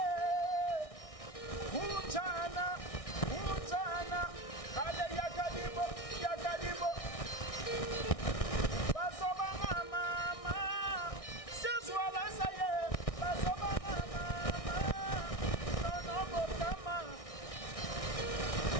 kunjana ale yakadibo basoba mama sezwala saye basoba mama nono bokama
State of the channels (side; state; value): right; late; 1.6 ms